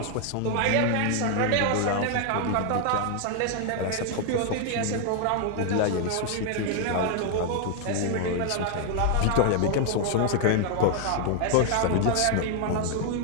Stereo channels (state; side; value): different; both; correlation 0.00